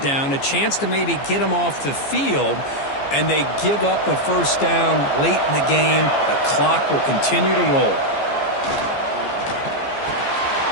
down, a chance to maybe get them off the field, and they give up a first down late in the game. The clock will continue to roll.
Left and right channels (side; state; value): right; late; 14 ms